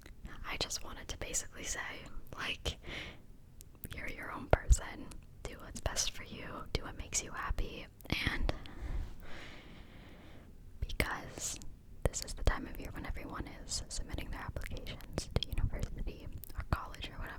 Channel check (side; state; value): both; identical; correlation 1.00